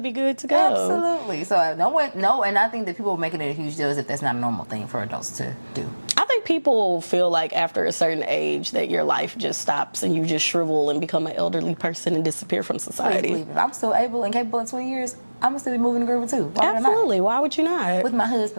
good to go. Absolutely. So and I think that people are making it a huge deal as if that's not a normal thing for adults to do. I think people feel like after a certain age that your life just stops and you just shrivel and become an elderly person and disappear from society. Please, if I'm still able and capable in 20 years, I'm gonna still be moving the groove too. Absolutely. Why would you not? With my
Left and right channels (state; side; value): inverted; both; correlation -1.00